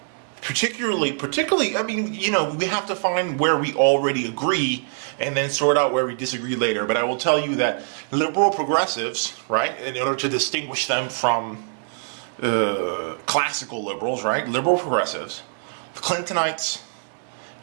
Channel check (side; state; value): left; silent; 63 dB below the other